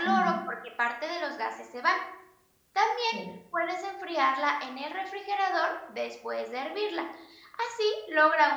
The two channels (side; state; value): both; identical; correlation 1.00